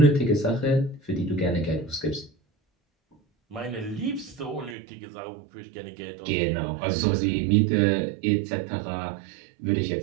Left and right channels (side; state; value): left; drops out; at 4.8 s